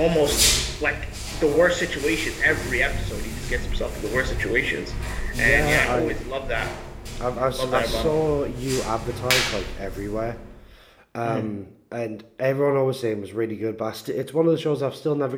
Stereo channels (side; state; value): both; identical; correlation 1.00